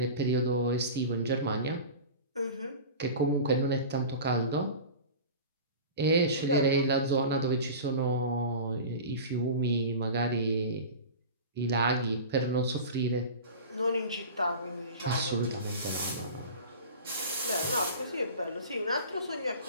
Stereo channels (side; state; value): both; inverted; correlation -0.34